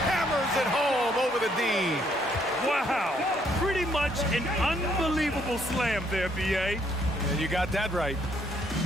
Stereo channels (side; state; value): both; normal; correlation 0.69